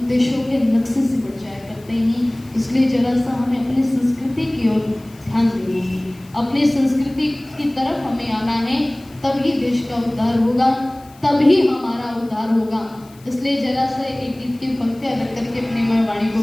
देशों के नक्शे से बढ़ जाया करते हैं। इसलिए जरा सा हमें अपनी संस्कृति की ओर ध्यान देना है, अपनी संस्कृति की तरफ हमें आना है, तभी देश का उद्धार होगा, तभी हमारा उद्धार होगा। इसलिए जरा सा एक गीत की पंक्तियां रख करके अपनी मैं वाणी को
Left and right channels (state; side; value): noise; left; hiss, 27 dB below the sound